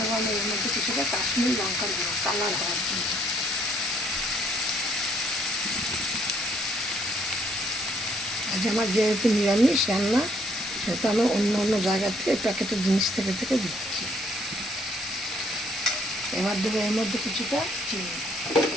আমি এর মধ্যে কিছুটা কাশ্মীরি লঙ্কার গুঁড়ো, কালার হওয়ার জন্য। আজ আমার যেহেতু নিরামিষ রান্না, সেটা আমি অন্য অন্য জায়গা থেকে প্যাকেটের জিনিস থেকে দিচ্ছি। এবার দেবো এর মধ্যে কিছুটা চিনি।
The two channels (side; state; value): both; normal; correlation 0.66